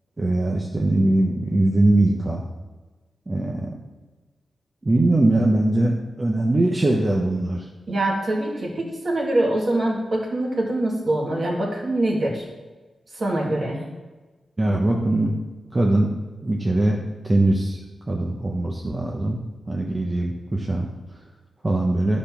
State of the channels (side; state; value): both; normal; correlation 0.95